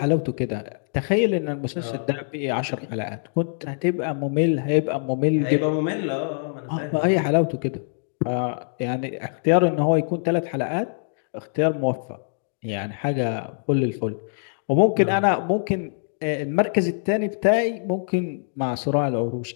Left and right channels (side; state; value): right; silent; digital silence